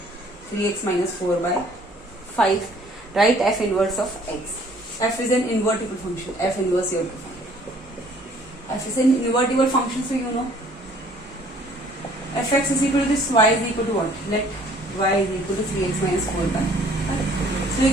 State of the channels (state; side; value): normal; both; correlation 0.58